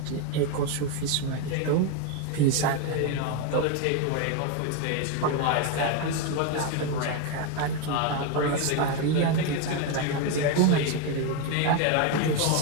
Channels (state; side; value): different; both; correlation 0.02